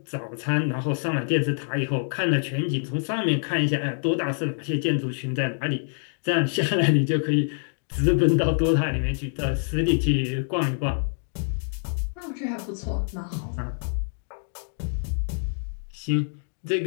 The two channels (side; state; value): right; silent; digital silence